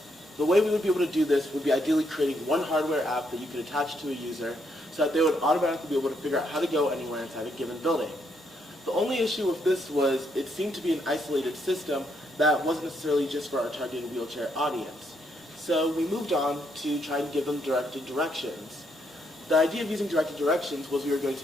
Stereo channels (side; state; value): both; normal; correlation 0.75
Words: The way we would be able to do this would be ideally creating one hardware app that you could attach to a user so that they would automatically be able to figure out how to go anywhere inside a given building. The only issue with this was it seemed to be an isolated system that wasn't necessarily just for our targeted wheelchair audience. So we moved on to try and give them directed directions. The idea of using directed directions was we were going